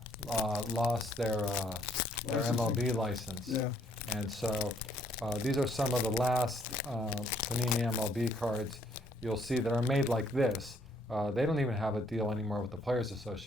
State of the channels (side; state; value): both; normal; correlation 0.66